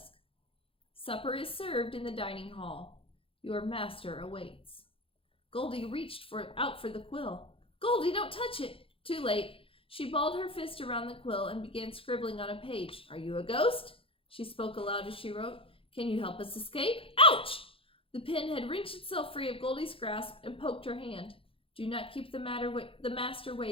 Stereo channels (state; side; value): late; right; 0.27 ms